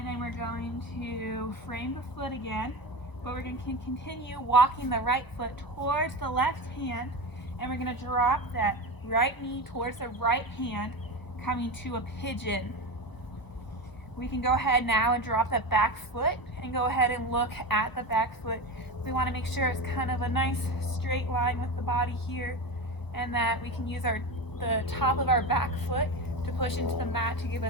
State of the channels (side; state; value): right; late; 1.0 ms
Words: then we're going to frame the foot again, but we're going to continue walking the right foot towards the left hand, and we're going to drop that right knee towards the right hand, coming to a pigeon. We can go ahead now and drop that back foot and go ahead and look at the back foot. We want to make sure it's kind of a nice straight line with the body here, and that we can use the top of our back foot to push into the mat to give